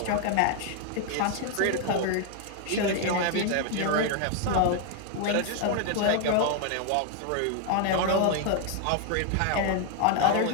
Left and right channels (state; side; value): different; both; correlation 0.00